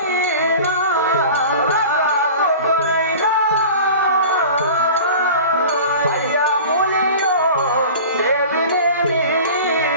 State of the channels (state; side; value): inverted; both; correlation -0.38